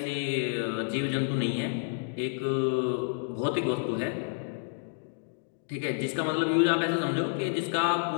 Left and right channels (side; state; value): right; silent; digital silence